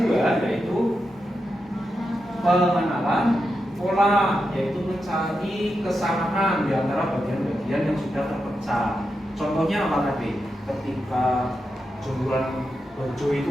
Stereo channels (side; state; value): both; normal; correlation 0.87